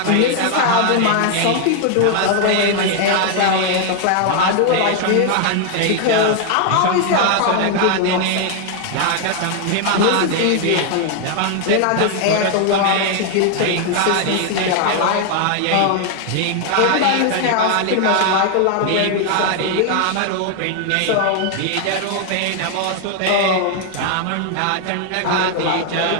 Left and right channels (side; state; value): both; different; correlation 0.00